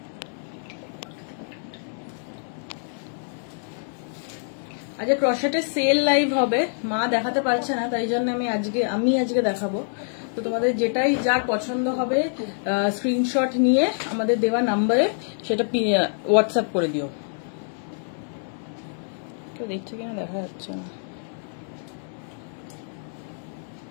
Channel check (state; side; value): silent; right; digital silence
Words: আজকে ক্রশেটের সেল লাইভ হবে, মা দেখাতে পারছে না, তাই জন্য আমি আজকে দেখাবো। তো তোমাদের যেটাই যার পছন্দ হবে স্ক্রিনশট নিয়ে আমাদের দেওয়া নাম্বারে সেটা হোয়াটসঅ্যাপ করে দিও। কেউ দেখছে কিনা দেখা যাচ্ছে না।